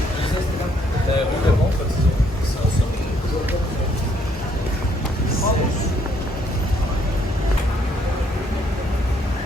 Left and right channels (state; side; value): normal; both; correlation 0.68